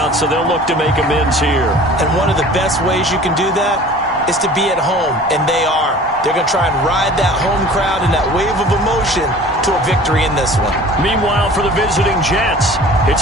so they'll look to make amends here. And one of the best ways you can do that is to be at home, and they are. They're going to try and ride that home crowd and that wave of emotion to a victory in this one. Meanwhile, for the visiting Jets,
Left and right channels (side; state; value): both; normal; correlation 0.45